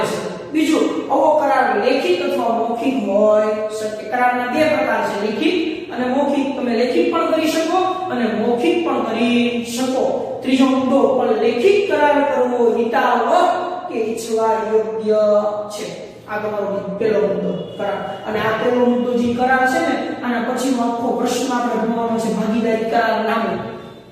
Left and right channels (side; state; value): both; identical; correlation 1.00